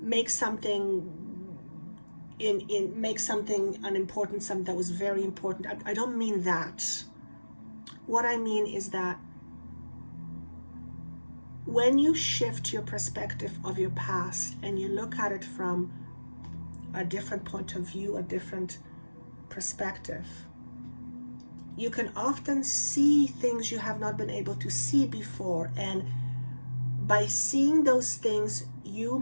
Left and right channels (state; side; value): inverted; both; correlation -1.00